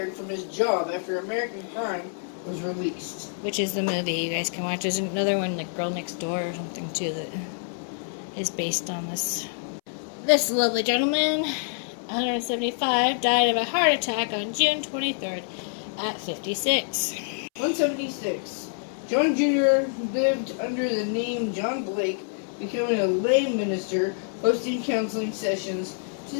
from his job after American Crime was released. Which is the movie you guys can watch. There's another one, like Girl Next Door or something, too, that is based on this. This lovely gentleman, 175, died of a heart attack on June 23rd at 56. 176. John Jr. lived under the name John Blake, becoming a lay minister, hosting counseling sessions to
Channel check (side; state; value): right; silent; 60 dB below the other